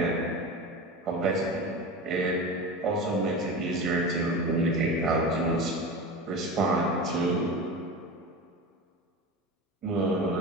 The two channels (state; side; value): normal; both; correlation 0.28